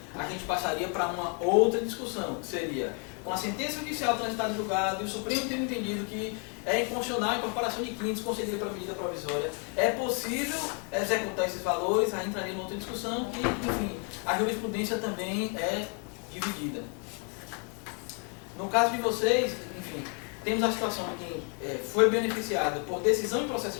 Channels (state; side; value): quieter; right; 38.5 dB